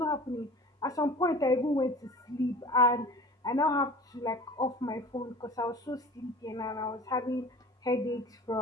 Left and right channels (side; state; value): both; normal; correlation 0.41